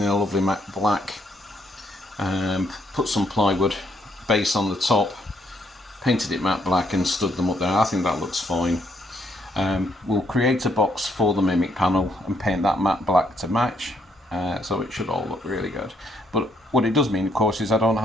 a lovely matte black, put some plywood base on the top, painted it matte black and stood them up there. I think that looks fine. We'll create a box for the Mimic panel and paint that matte black to match, so it should all look really good. But what it does mean, of course, is I don't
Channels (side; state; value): both; normal; correlation 0.72